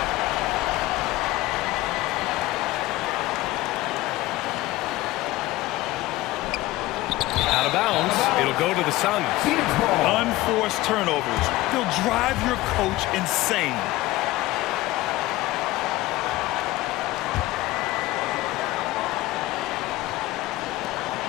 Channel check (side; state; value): right; quieter; 18.0 dB